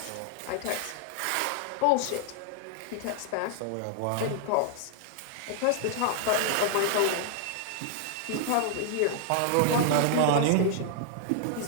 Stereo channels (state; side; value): different; both; correlation -0.01